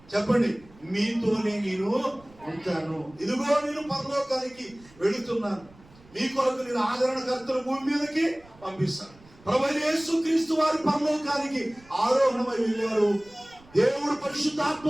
చెప్పండి, మీతోనే నేను ఉంటాను. ఇదిగో నేను పరలోకానికి వెళుతున్నాను, మీ కొరకు నేను ఆదరణకర్తను భూమి మీదకి పంపిస్తాను. ప్రభువైన యేసుక్రీస్తు వారి పరలోకానికి ఆరోహణమై వెళ్ళారు. దేవుడు పరిశుద్ధాత్మ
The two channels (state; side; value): noise; right; rumble, 26 dB below the sound